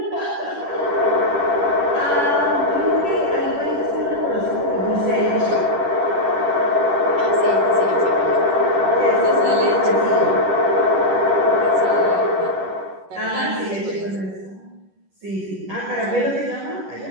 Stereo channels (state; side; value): late; left; 10 ms